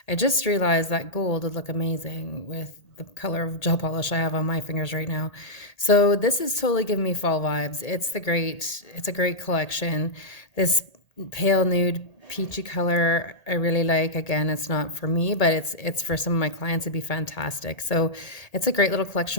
I just realized that gold would look amazing with the color of gel polish I have on my fingers right now. So this is totally giving me fall vibes. It's a great collection. This pale nude peachy color I really like. Again, it's not for me, but it's for some of my clients. It'd be fantastic. So it's a great little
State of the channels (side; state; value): right; late; 1.8 ms